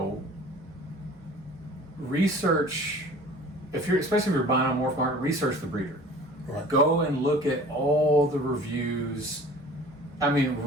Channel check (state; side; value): normal; both; correlation 0.45